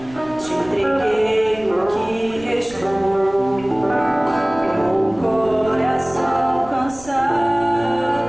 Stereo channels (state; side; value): noise; right; rumble, 20 dB below the sound